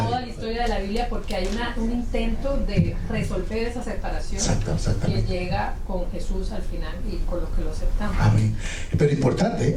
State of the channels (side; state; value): both; identical; correlation 1.00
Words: la historia de la Biblia, porque hay un intento de resolver esa separación que llega con Jesús al final y con los que lo aceptamos. Amén. Pero importante